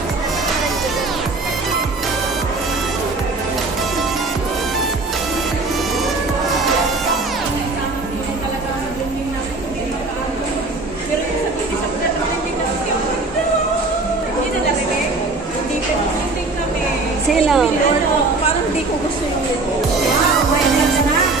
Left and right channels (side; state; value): left; quieter; 3.4 dB